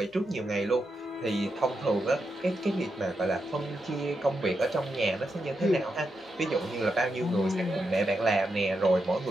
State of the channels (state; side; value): normal; both; correlation 0.85